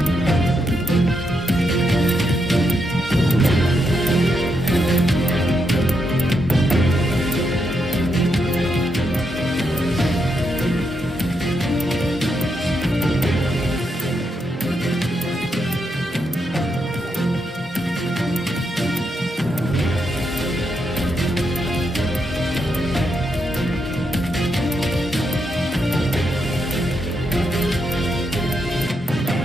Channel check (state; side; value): normal; both; correlation 0.81